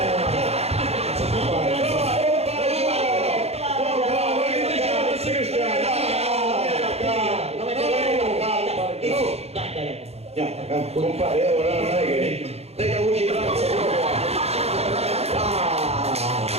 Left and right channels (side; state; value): left; late; 0.30 ms